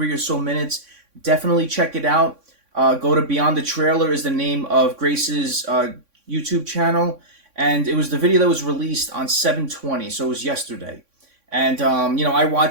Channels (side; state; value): left; late; 3.6 ms